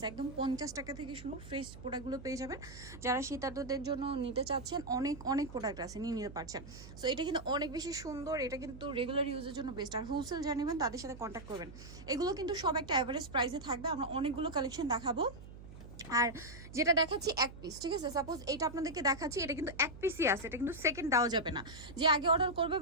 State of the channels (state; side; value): noise; right; hum, 15 dB below the sound